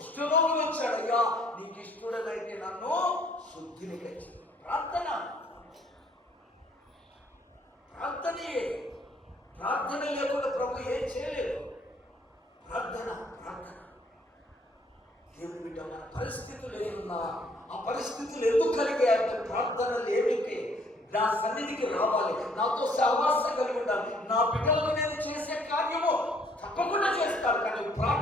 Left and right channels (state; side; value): normal; both; correlation 0.63